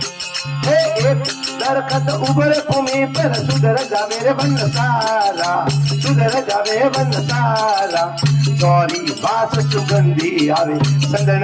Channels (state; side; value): identical; both; correlation 1.00